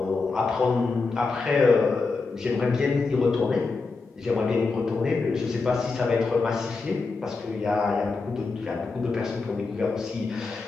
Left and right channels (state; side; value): quieter; right; 4.1 dB